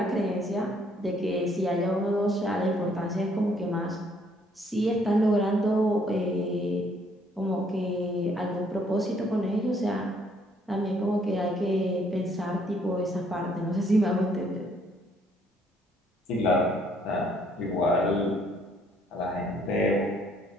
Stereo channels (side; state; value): both; normal; correlation 0.66